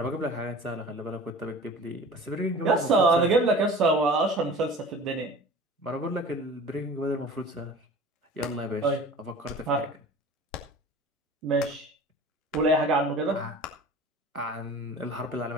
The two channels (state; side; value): normal; both; correlation 0.41